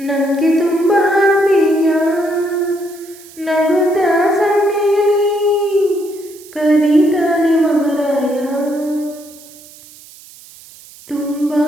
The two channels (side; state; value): right; noise; hiss, 21 dB below the sound